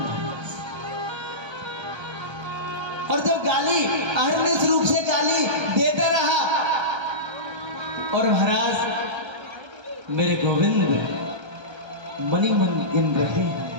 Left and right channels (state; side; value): late; left; 1.3 ms